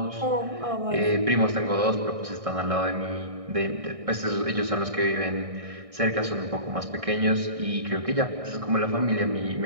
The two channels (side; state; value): left; late; 1.6 ms